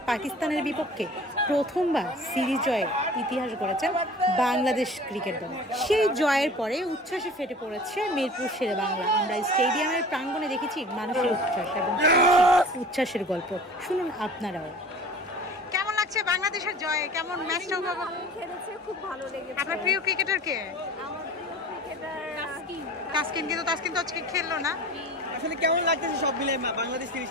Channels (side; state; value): both; normal; correlation 0.42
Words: পাকিস্তানের বিপক্ষে প্রথমবার সিরিজ জয়ের ইতিহাস গড়েছেন বাংলাদেশ ক্রিকেট দল। সেই জয়ের পরে উচ্ছ্বাসে ফেটে পড়েছে মিরপুর শেরে বাংলা। আমরা স্টেডিয়ামের প্রাঙ্গণে দেখেছি মানুষের উচ্ছ্বাস এবং উচ্ছ্বাসের গল্প। শুনুন আপনারাও। কেমন লাগছে বাংলাদেশের জয়ে? কেমন ম্যাচটা উপভোগ খেলেছে? খুব ভালো লেগেছে। আপনার প্রিয় ক্রিকেটার কে? আমার প্রিয় ক্রিকেটার তাসকিন। কিন্তু তাসকিন তো আজকে খেললো না। আসলে কেমন লাগতেছে সব মিলে বাংলাদেশ